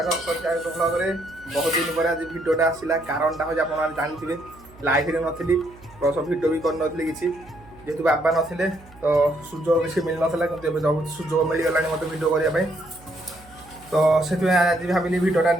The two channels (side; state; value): right; noise; hum, 23 dB below the sound